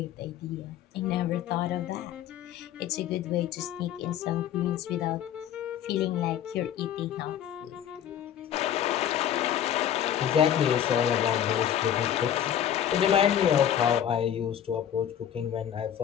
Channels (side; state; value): right; quieter; 10.1 dB